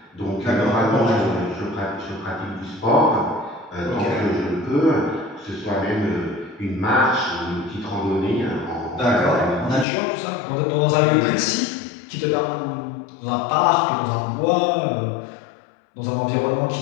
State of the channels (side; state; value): right; drops out; at 9.9 s